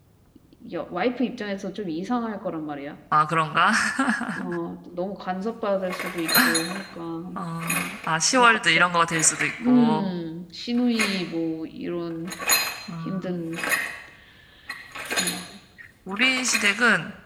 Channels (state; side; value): identical; both; correlation 1.00